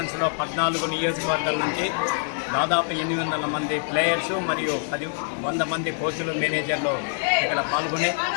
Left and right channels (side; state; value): right; silent; 61 dB below the other